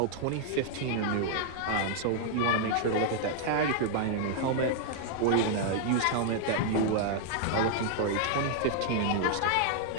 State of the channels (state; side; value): different; both; correlation -0.01